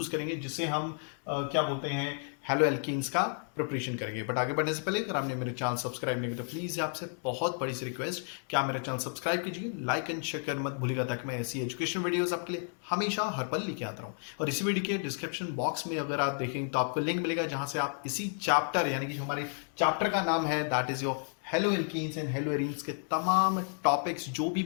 करेंगे जिससे हम क्या बोलते हैं हेलो एल्कीन्स का प्रिपरेशन करेंगे। बट आगे बढ़ने से पहले अगर आपने मेरे चैनल सब्सक्राइब नहीं किया तो प्लीज आपसे बहुत बड़ी सी रिक्वेस्ट कि आप मेरे चैनल सब्सक्राइब कीजिए, लाइक एंड शेयर कर मत भूलिएगा, ताकि मैं ऐसी एजुकेशन वीडियोस आपके लिए हमेशा हर पल लेके आता रहूं। और इसी वीडियो के डिस्क्रिप्शन बॉक्स में अगर आप देखें तो आपको लिंक मिलेगा जहां से आप इसी चैप्टर यानी कि जो हमारे चैप्टर का नाम है that is your hello alkenes and hello arenes के तमाम टॉपिक्स जो भी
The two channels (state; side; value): silent; right; 56 dB below the other